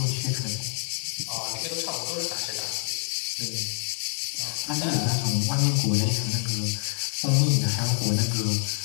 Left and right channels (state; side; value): silent; right; 60 dB below the other